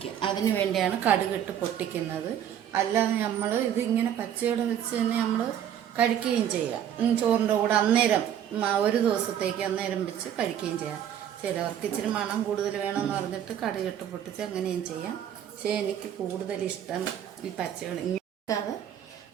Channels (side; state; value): left; quieter; 9.9 dB